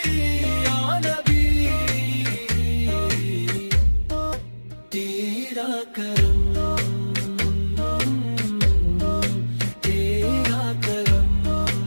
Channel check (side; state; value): both; inverted; correlation -1.00